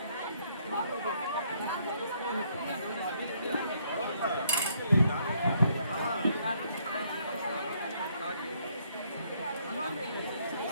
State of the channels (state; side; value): inverted; both; correlation -0.69